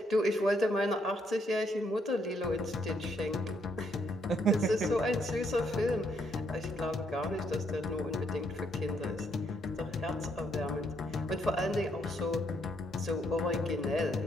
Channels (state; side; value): normal; both; correlation 0.73